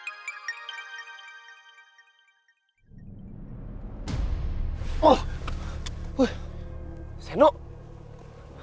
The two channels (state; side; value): identical; both; correlation 1.00